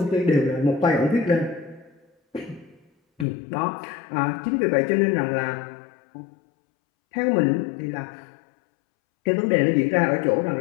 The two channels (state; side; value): drops out; right; at 3.2 s